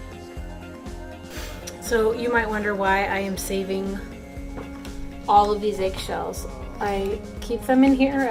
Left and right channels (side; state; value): both; identical; correlation 1.00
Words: So you might wonder why I am saving all of these eggshells. I keep them in here,